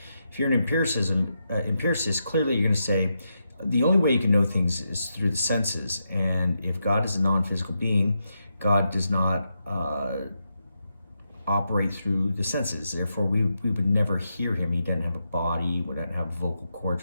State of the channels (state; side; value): inverted; both; correlation -0.84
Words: If you're an empiricist, clearly you're going to say the only way you can know things is through the senses. And if God is a non-physical being, God does not operate through the senses. Therefore, we would never hear him. He doesn't have a body. We don't have vocal